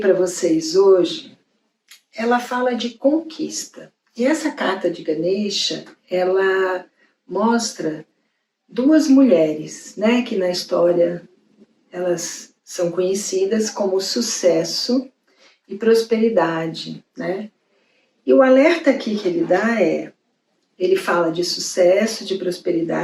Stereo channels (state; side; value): identical; both; correlation 1.00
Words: vocês hoje, ela fala de conquista. E essa carta de Ganesha, ela mostra duas mulheres, né, que na história elas são conhecidas como sucesso e prosperidade, né? E o alerta aqui que ele dá ele fala de sucesso, de